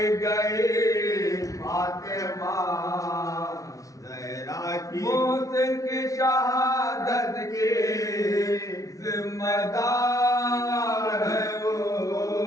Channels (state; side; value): late; right; 0.17 ms